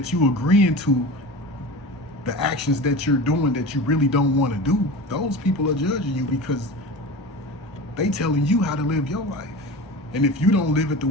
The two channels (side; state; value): both; normal; correlation 0.31